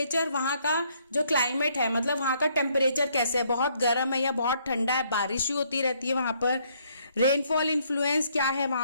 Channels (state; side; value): inverted; both; correlation -0.68